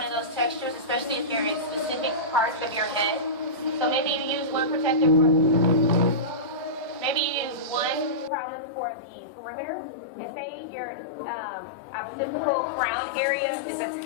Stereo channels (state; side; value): drops out; right; at 8.3 s